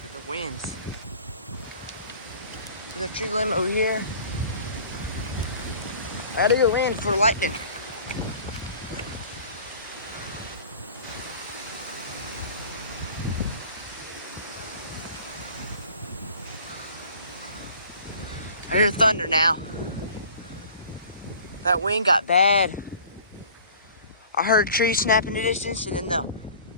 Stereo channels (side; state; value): both; inverted; correlation -0.47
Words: at the winds. There's a tree limb over here. I gotta go in for lightning. I hear thunder now. That wind got bad. I heard a tree snap in the distance, and then the